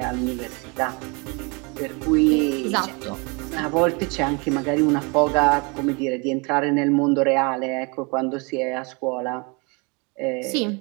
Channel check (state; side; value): quieter; left; 30.7 dB